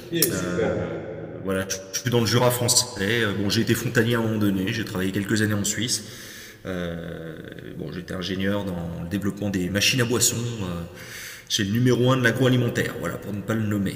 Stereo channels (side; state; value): both; identical; correlation 1.00